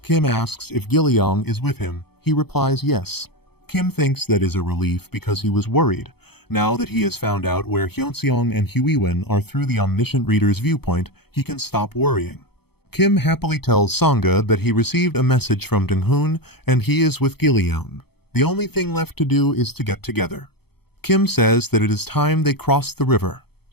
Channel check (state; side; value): late; right; 0.96 ms